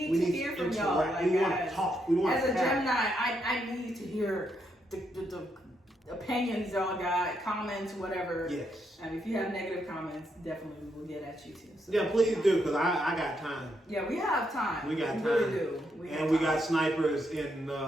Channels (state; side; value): normal; both; correlation 0.79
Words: to hear from y'all. Like, we want to talk. As a Gemini, I need to hear the opinions y'all got, comments, whatever. Yes. And if you have negative comments, definitely we will get at you too. So yeah, please do, because I got time. Yeah, we have time. We got time. We really do. We got snipers in